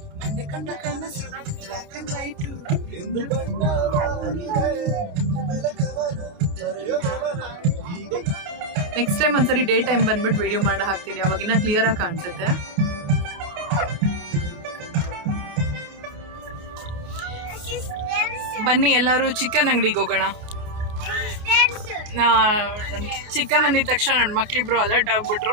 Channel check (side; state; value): left; late; 29 ms